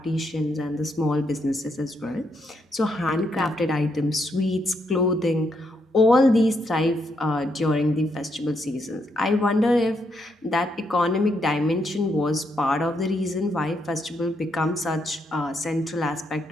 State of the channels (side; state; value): both; normal; correlation 0.78